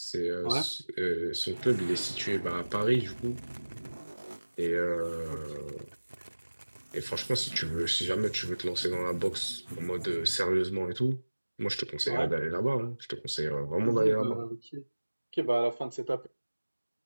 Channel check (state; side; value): inverted; both; correlation -1.00